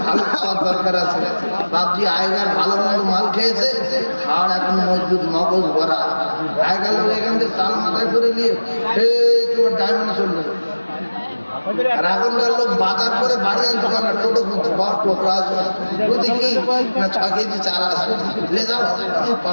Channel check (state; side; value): inverted; both; correlation -1.00